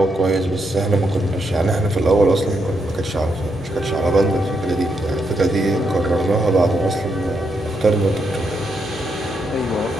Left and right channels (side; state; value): both; normal; correlation 0.80